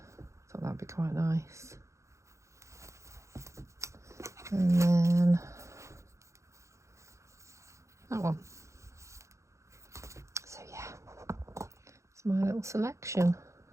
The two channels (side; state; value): left; late; 0.14 ms